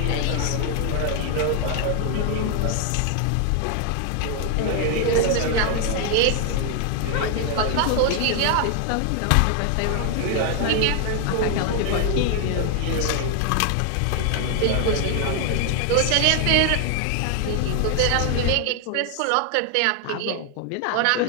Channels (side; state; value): both; different; correlation 0.00